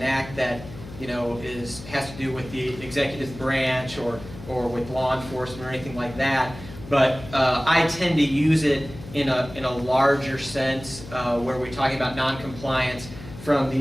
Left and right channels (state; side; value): noise; left; hum, 15 dB below the sound